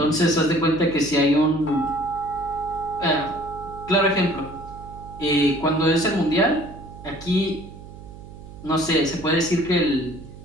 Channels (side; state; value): right; noise; hum, 16 dB below the sound